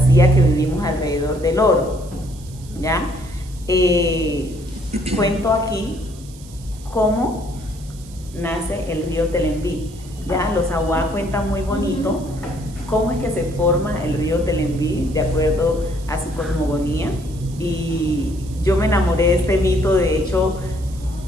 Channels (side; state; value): right; noise; hiss, 21 dB below the sound